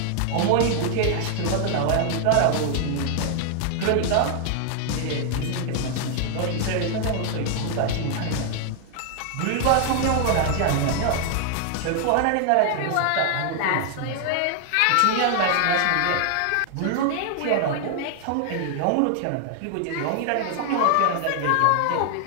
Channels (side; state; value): both; different; correlation 0.00